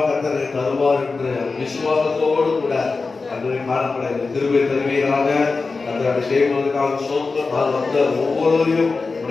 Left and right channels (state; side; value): quieter; right; 4.1 dB